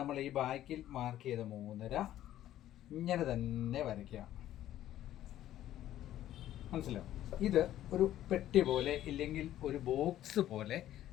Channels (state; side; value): quieter; right; 12.8 dB